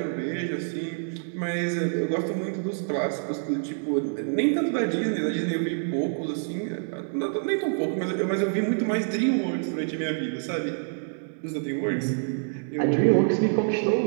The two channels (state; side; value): silent; left; digital silence